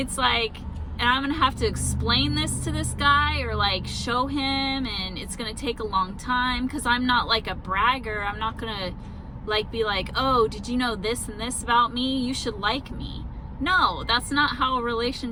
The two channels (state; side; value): identical; both; correlation 1.00